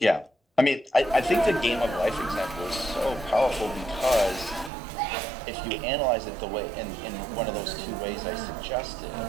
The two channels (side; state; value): left; drops out; at 4.7 s